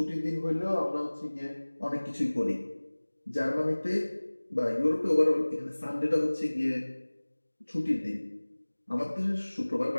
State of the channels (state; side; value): inverted; both; correlation -1.00